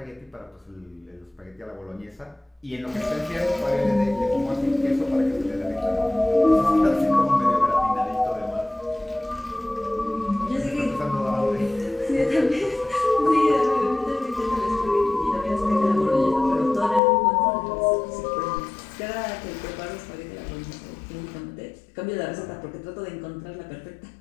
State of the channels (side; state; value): right; drops out; at 17.0 s